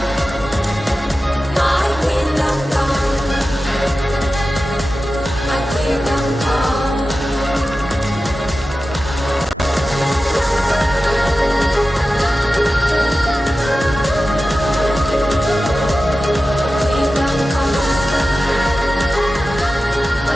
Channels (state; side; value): normal; both; correlation 0.94